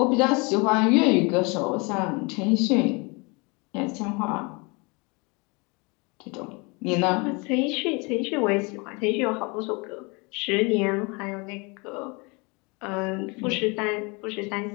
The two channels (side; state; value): right; quieter; 28.9 dB